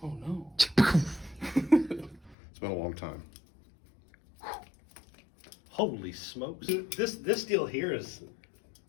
Oh, no. It's been a long time. Holy smokes. This deal here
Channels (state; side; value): drops out; right; at 2.4 s